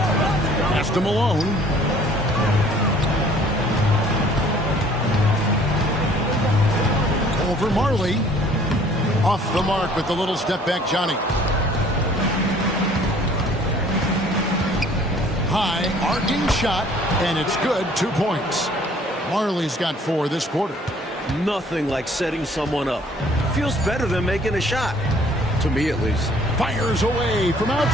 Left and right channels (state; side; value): normal; both; correlation 0.56